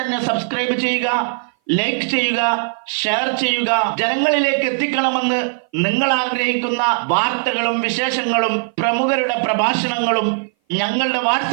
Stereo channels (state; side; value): silent; left; 59 dB below the other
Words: സബ്സ്ക്രൈബ് ചെയ്യുക, ലൈക്ക് ചെയ്യുക, ഷെയർ ചെയ്യുക. ജനങ്ങളിലേക്ക് എത്തിക്കണമെന്ന് നിങ്ങൾ ആഗ്രഹിക്കുന്ന വാർത്തകളും വിശേഷങ്ങളും പ്രമുഖരുടെ പ്രഭാഷണങ്ങളും ഞങ്ങളുടെ